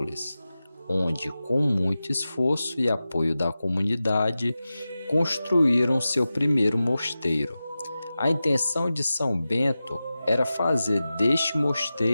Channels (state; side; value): inverted; both; correlation -0.94